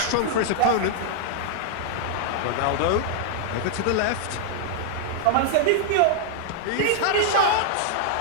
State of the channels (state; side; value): different; both; correlation -0.01